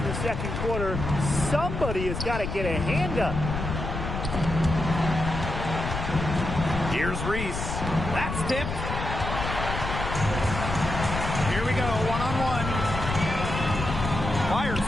the second quarter. Somebody has got to get a hand up. Here's Reese. That's tipped. Here we go, one-on-one. Fires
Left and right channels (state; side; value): noise; left; rumble, 4 dB below the sound